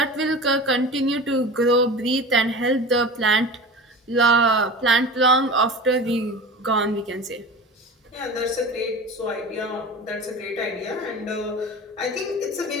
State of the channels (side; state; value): both; normal; correlation 0.33